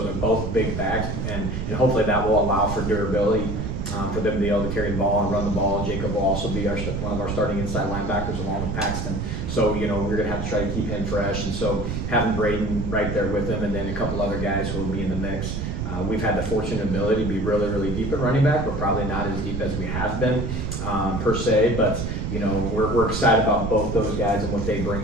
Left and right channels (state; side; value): noise; right; rumble, 3 dB below the sound